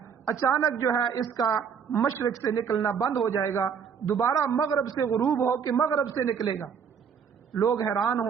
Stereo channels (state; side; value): quieter; left; 6.9 dB